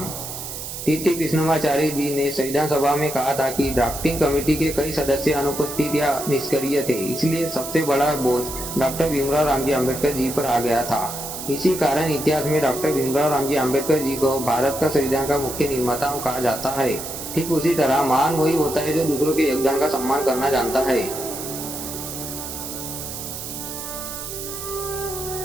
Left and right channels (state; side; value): noise; right; hiss, 8 dB below the sound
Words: टी.टी. कृष्णमाचारी जी ने संविधान सभा में कहा था कि ड्राफ्टिंग कमेटी के कई सदस्य अनुपस्थित या निष्क्रिय थे, इसलिए सबसे बड़ा बोझ डॉक्टर भीमराव रामजी आम्बेडकर जी पर आ गया था। इसी कारण इतिहास में डॉक्टर भीमराव रामजी आम्बेडकर जी को भारत का संविधान का मुख्य निर्माता कहा जाता है। ठीक उसी तरह महान वही होता है जो दूसरों के योगदान का सम्मान करना जानता है।